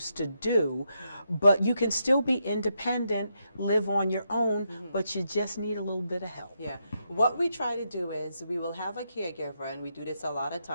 to do, but you can still be independent, live on your own, but you just need a little bit of help. Yeah. What we try to do is we will have a caregiver, and we do this a lot of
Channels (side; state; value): both; inverted; correlation -0.81